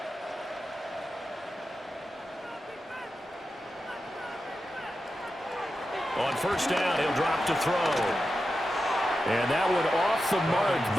On first down, he'll drop to throw. And that one off the mark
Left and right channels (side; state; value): both; normal; correlation 0.91